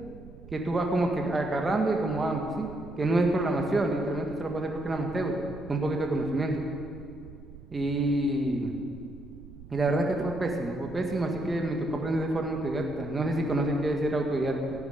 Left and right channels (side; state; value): right; noise; rumble, 17 dB below the sound